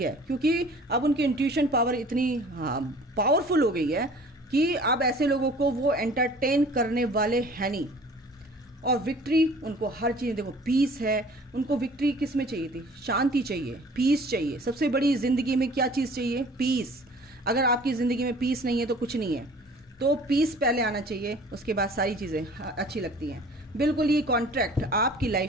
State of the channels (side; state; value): both; normal; correlation 0.49